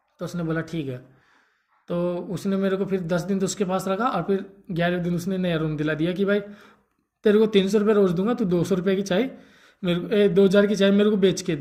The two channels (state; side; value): identical; both; correlation 1.00